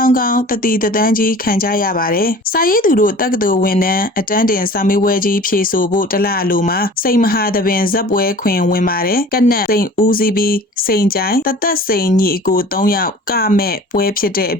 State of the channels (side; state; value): both; normal; correlation 0.44